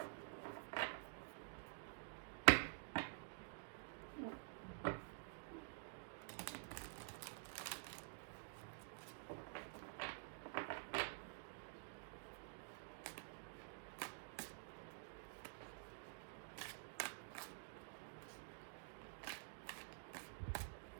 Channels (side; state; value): left; silent; digital silence